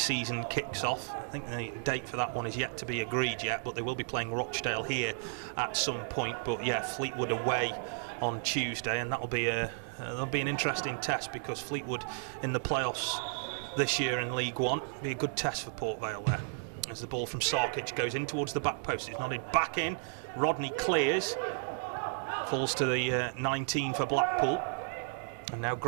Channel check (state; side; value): silent; left; digital silence